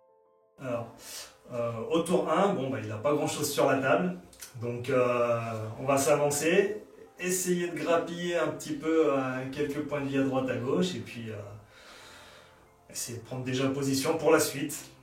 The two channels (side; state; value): both; identical; correlation 1.00